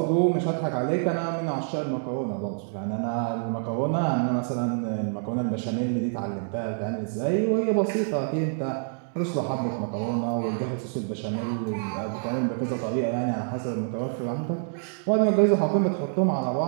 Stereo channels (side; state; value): left; silent; digital silence